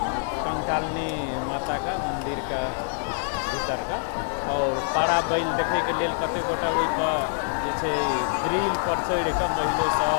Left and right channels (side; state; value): right; silent; digital silence